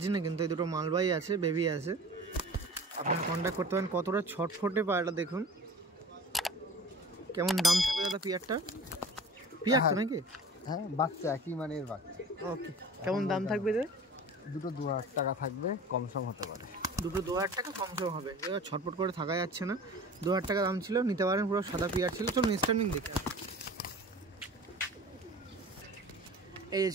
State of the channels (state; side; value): normal; both; correlation 0.41